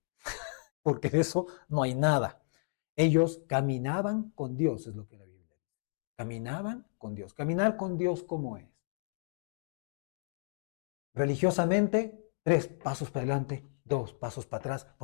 porque de eso no hay nada. Ellos caminaban con Dios, es lo que la Biblia dice. Caminaban con Dios. Caminar con Dios, ¿cómo es? Religiosamente, 3 pasos para adelante, 2 pasos para atrás,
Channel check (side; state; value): right; silent; digital silence